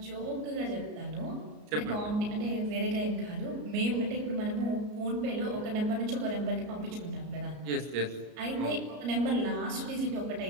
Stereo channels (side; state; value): left; late; 33 ms